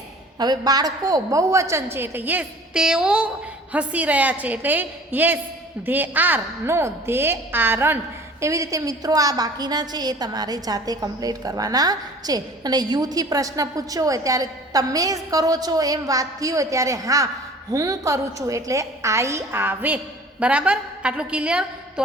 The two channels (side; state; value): both; normal; correlation 0.47